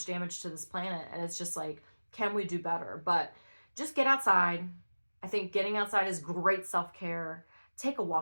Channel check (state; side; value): inverted; both; correlation -1.00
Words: damage to this planet, and it's just like, can we do better? But just get outside. I think getting outside is great self-care. Take a